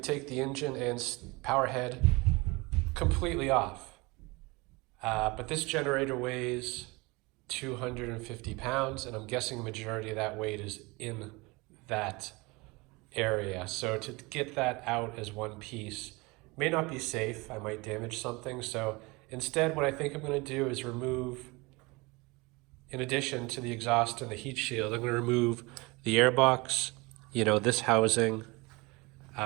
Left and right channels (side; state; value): left; quieter; 25.0 dB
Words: take the engine and power head completely off. But this generator weighs 250 pounds, and I'm guessing the majority of that weight is in that area. So to get that out as one piece may not be safe. I might damage something. So instead, what I think I'm going to do is remove, in addition to the exhaust and the heat shield, I'm going to remove the airbox, you know, this housing,